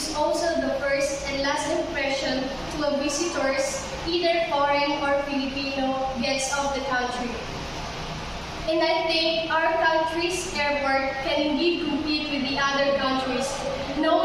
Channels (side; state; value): both; identical; correlation 1.00